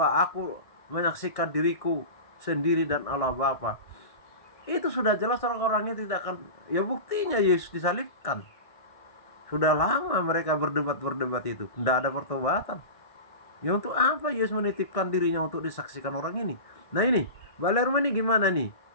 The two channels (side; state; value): right; late; 1.6 ms